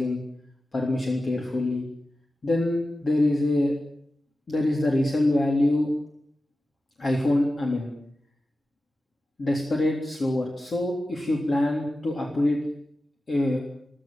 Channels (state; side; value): normal; both; correlation 0.93